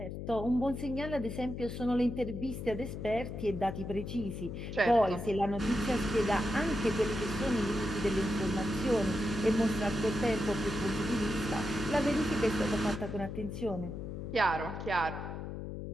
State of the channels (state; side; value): noise; left; hum, 7 dB below the sound